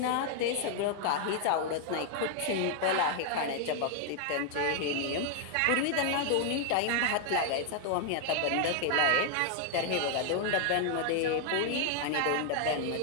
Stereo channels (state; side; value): different; both; correlation 0.00